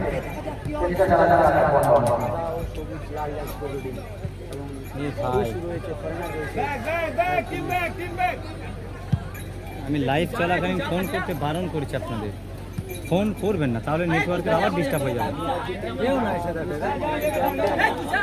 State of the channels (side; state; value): both; identical; correlation 1.00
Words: আমি লাইভ চলাকালীন ফোন করতে বারণ করেছি আপনাদের, ফোন করবেন না, তাহলে নেটওয়ার্কের আবার ডিস্টার্ব হয়ে যাবে।